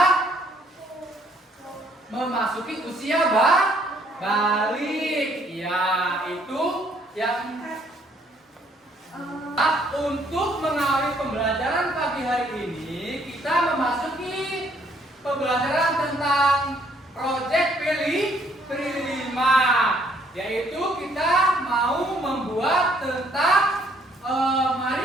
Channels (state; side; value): normal; both; correlation 0.65